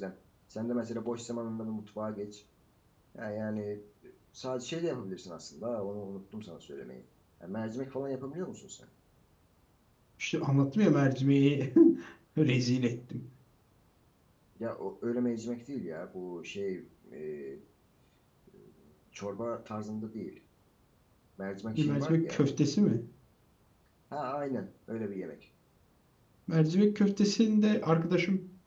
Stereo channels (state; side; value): identical; both; correlation 1.00